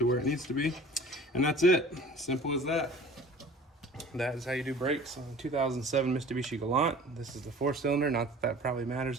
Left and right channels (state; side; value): normal; both; correlation 0.45